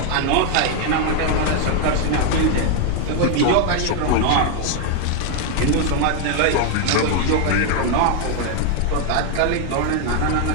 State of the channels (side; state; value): both; different; correlation 0.00